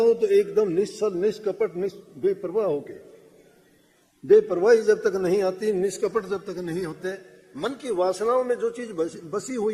तो एकदम निश्चल, निष्कपट, बेपरवाह होके। बेपरवाही जब तक नहीं आती, निष्कपट जब तक नहीं होते, मन की वासनाओं में जो चीज बसी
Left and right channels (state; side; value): identical; both; correlation 1.00